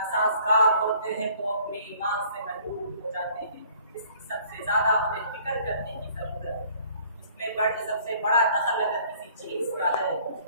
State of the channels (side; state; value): both; inverted; correlation -0.56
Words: ہوتے ہیں تو اپنے ایمان سے محروم ہو جاتے ہیں۔ اس کی سب سے زیادہ ہمیں فکر کرنے کی ضرورت ہے۔ اس میں سب سے بڑا دخل اگر کسی چیز کا ہے